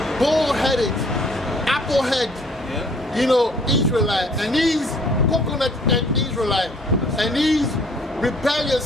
bull-headed, apple-head, you know, Israelite, and these coconut head Israelite, and these rebellious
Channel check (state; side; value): normal; both; correlation 0.58